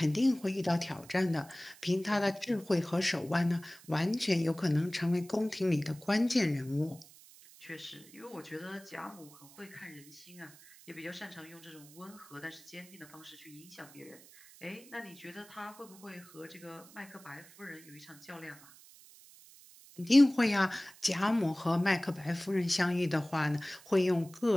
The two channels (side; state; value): right; noise; hiss, 22 dB below the sound